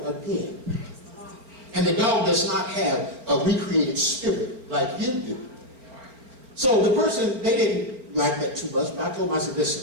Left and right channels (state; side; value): late; left; 4.3 ms